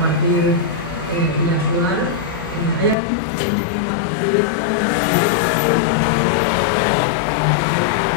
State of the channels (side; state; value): right; drops out; at 3.0 s